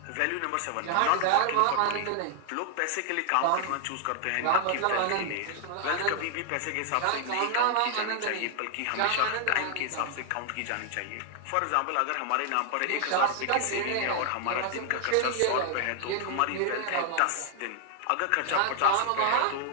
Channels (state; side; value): different; both; correlation 0.00